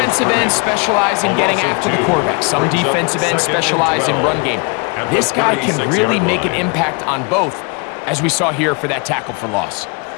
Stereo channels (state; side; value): quieter; right; 32.8 dB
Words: ends specialize in getting after the quarterback. Some defensive ends specialize in run game. This guy can really make an impact on both, as we saw here for that tackle for loss.